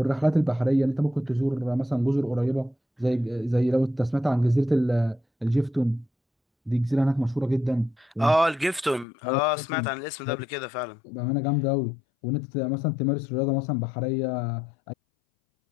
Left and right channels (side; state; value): right; drops out; at 9.1 s